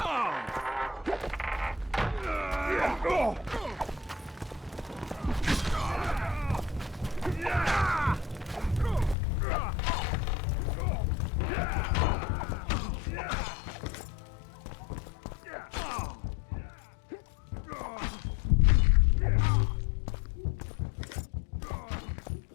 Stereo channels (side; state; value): right; drops out; at 9.2 s